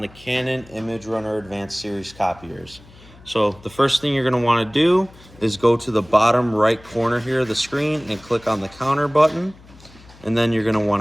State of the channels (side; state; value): left; noise; hum, 23 dB below the sound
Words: the Canon imageRUNNER Advanced Series copiers. So the first thing you're going to want to do is go to the bottom right corner here of the screen and click on the counter button. And then you're going to want